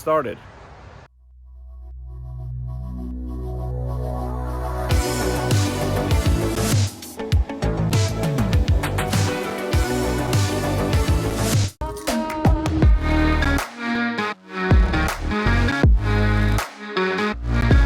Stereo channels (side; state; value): both; identical; correlation 1.00